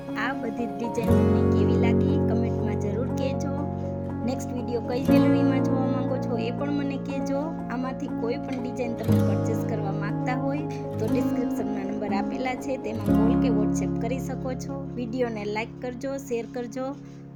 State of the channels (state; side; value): identical; both; correlation 1.00